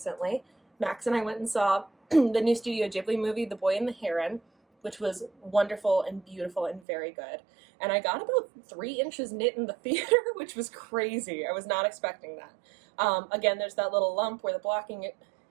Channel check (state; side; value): drops out; left; at 6.8 s